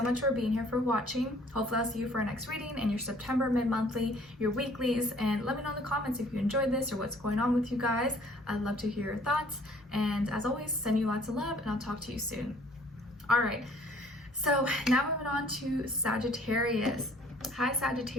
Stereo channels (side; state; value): both; normal; correlation 0.57